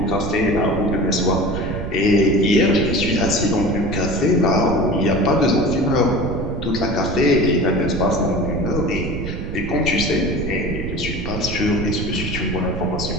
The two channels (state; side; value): noise; right; rumble, 5 dB below the sound